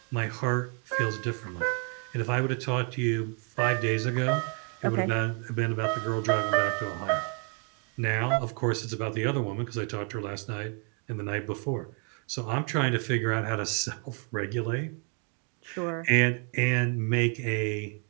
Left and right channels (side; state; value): left; quieter; 39.4 dB